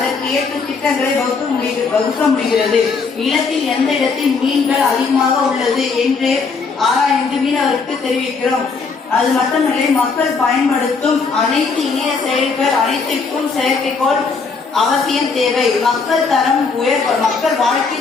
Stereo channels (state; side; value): quieter; right; 4.8 dB